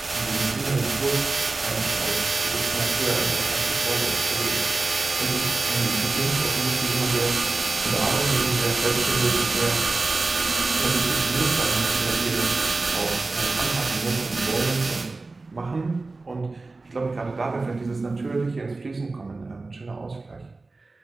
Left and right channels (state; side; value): quieter; left; 3.5 dB